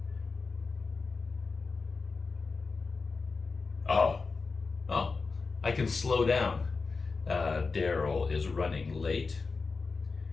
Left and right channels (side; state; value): right; quieter; 4.3 dB